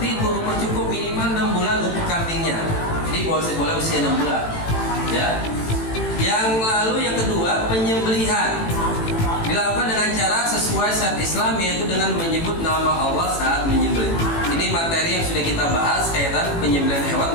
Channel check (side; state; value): right; late; 18 ms